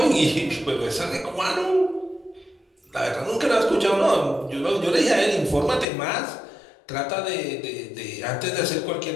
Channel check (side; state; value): right; drops out; at 5.9 s